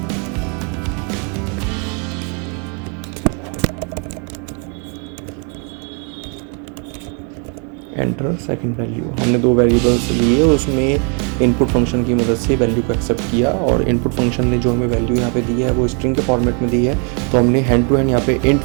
एंटर सेकंड वैल्यू। हमने 2 वेरिएबल्स लिए और उसमें इनपुट फंक्शन की मदद से वैल्यू को एक्सेप्ट किया, और इनपुट फंक्शन ने जो हमें वैल्यू यहाँ पे दी है वो स्ट्रिंग के फॉर्मेट में दी है। तो हमने हैंड टू हैंड यहाँ पे इंट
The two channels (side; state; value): left; quieter; 38.1 dB